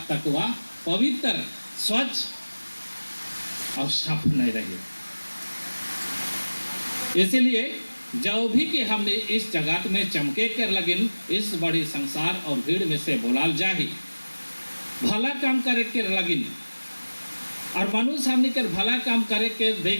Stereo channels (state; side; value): inverted; both; correlation -1.00